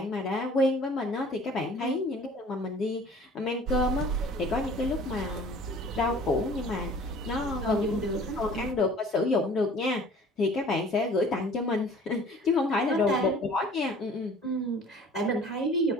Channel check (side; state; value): both; normal; correlation 0.49